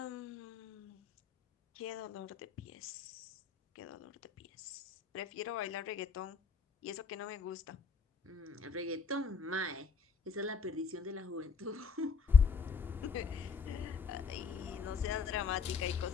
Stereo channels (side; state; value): right; quieter; 5.5 dB